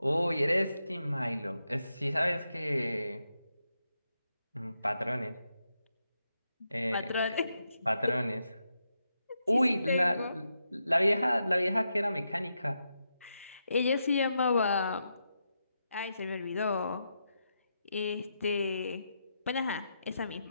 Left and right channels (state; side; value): inverted; both; correlation -0.84